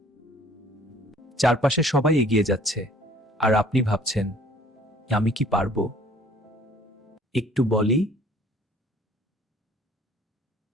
চারপাশে সবাই এগিয়ে যাচ্ছে আর আপনি ভাবছেন, আমি কি পারবো? একটু বলি,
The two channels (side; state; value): both; normal; correlation 0.55